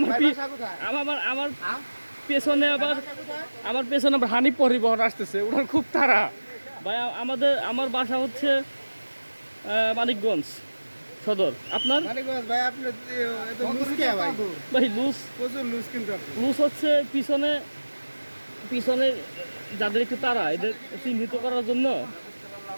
আমার পেছনে আবার হানিফ পরিবহন আসতেছে, ওনার খুব তাড়া ভাই। আমার বাসা হচ্ছে মানিকগঞ্জ সদর। আপনার ভাই লুজ হচ্ছে পিছনে যাদের একটু তাড়া, এদের চিহ্নিত করার জন্য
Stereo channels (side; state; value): both; inverted; correlation -1.00